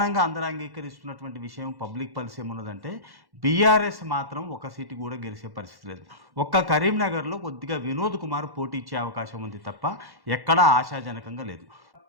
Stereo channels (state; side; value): late; left; 1.1 ms